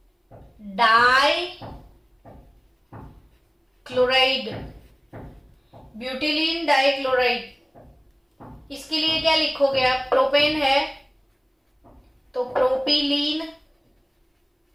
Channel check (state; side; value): identical; both; correlation 1.00